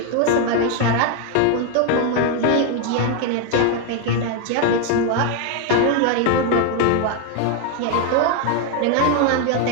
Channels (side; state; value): both; different; correlation 0.01